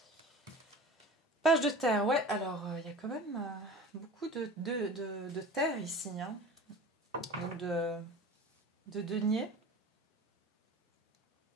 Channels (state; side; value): normal; both; correlation 0.37